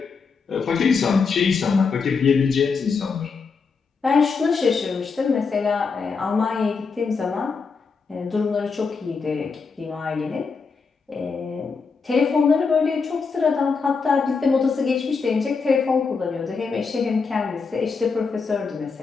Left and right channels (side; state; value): right; quieter; 5.0 dB